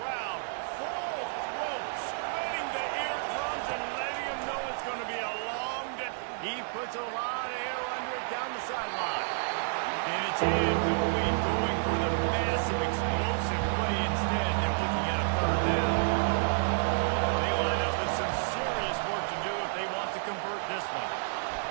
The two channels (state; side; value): silent; left; digital silence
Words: full throat, splitting the eardrums and letting him know it's going to be a long day. He puts a lot of air under it down the sideline. And it's incomplete, going for the massive explosive play instead. They're looking at a third down. They line up with some serious work to do if they want to convert this one.